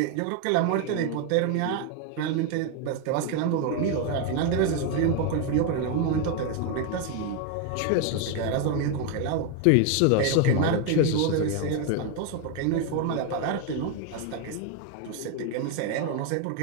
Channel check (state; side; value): different; both; correlation 0.01